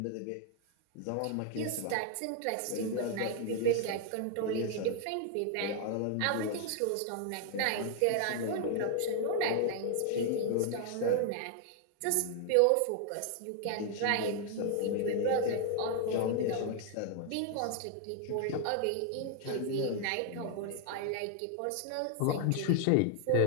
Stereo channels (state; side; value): different; both; correlation 0.00